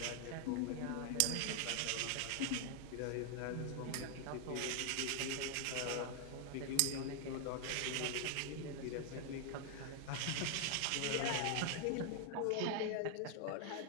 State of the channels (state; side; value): different; both; correlation 0.00